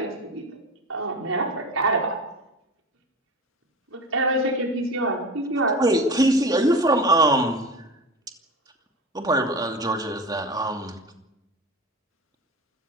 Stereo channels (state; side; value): normal; both; correlation 0.31